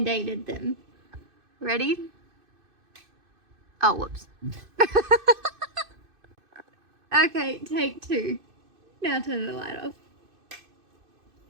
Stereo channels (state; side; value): late; left; 2.5 ms